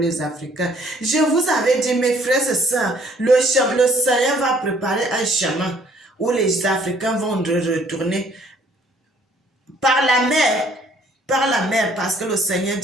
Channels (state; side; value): normal; both; correlation 0.61